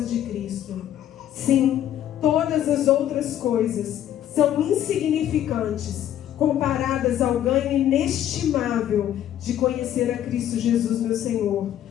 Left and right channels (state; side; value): quieter; right; 11.2 dB